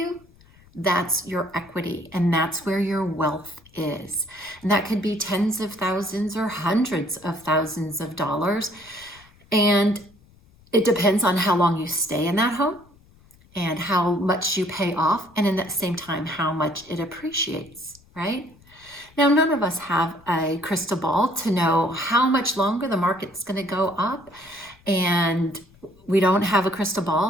that's your equity. And that's where your wealth is. And that could be tens of thousands or hundreds of thousands of dollars. And it depends on how long you stay in that home and how much you pay off. And in that same time, how much it appreciates, right? Now, none of us have a crystal ball to know how much longer the market's going to go up, and we don't have a crystal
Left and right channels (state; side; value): noise; left; rumble, 28 dB below the sound